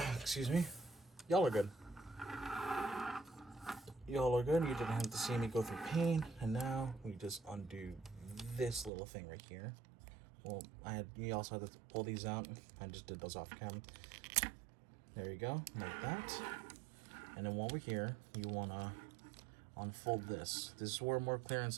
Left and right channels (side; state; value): left; drops out; at 8.9 s